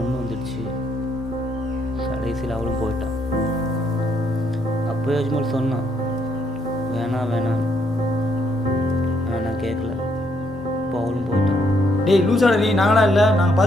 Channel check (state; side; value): normal; both; correlation 0.73